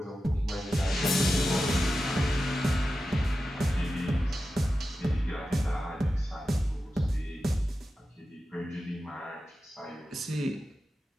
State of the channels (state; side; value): normal; both; correlation 0.92